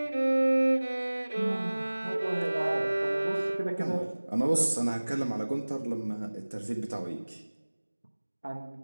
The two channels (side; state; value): both; inverted; correlation -1.00